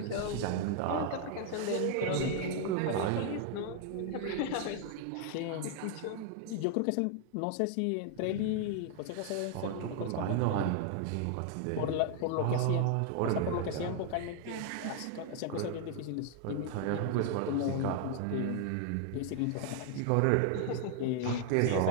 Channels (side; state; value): both; different; correlation 0.00